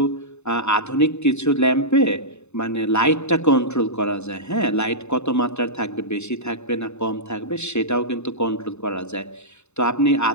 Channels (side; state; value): right; late; 0.82 ms